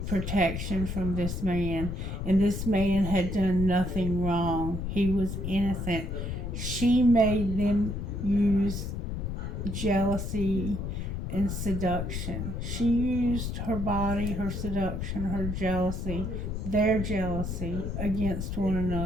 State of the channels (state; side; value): noise; left; rumble, 4 dB below the sound